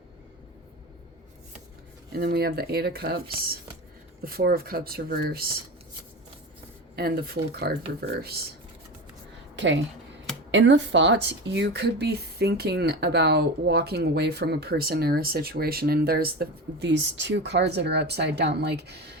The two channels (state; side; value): normal; both; correlation 0.26